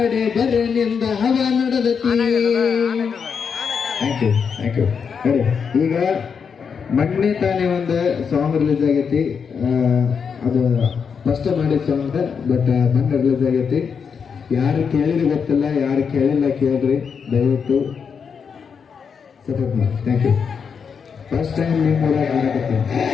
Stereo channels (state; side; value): quieter; right; 6.4 dB